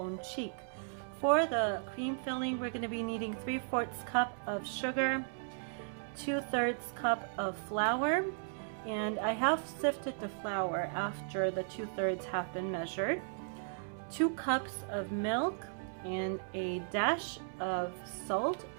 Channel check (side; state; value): left; silent; 54 dB below the other